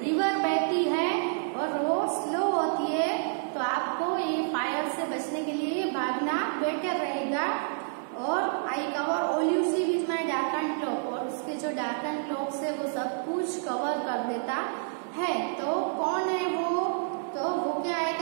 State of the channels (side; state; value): left; silent; digital silence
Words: बहती है और वो स्लो होती है। तो आपको ये फायर से बचने के लिए भागना बेटर रहेगा। और I cover all you see with my darken cloak, और उसके जो डार्कन क्लोक से वो सब कुछ कवर कर देता है। तो कौन है वो? तो वो क्या